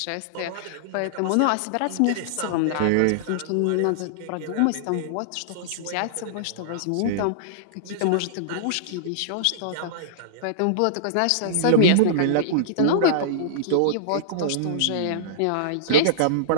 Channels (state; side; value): different; both; correlation -0.02